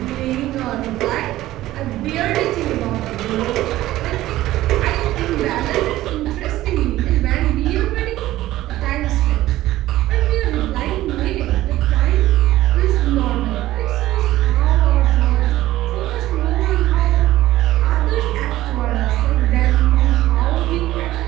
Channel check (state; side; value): quieter; left; 15.5 dB